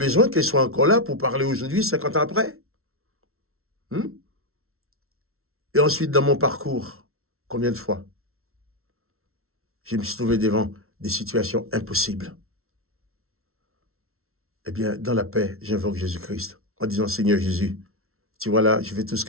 qu'elle soit encore là pour parler aujourd'hui, 50 ans après. Et ensuite, dans mon parcours, combien de fois je me suis trouvé devant des situations impossibles. Eh bien, dans la paix, j'invoque Jésus-Christ en disant, Seigneur Jésus, tu vois là, je fais tout ce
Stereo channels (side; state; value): left; late; 0.62 ms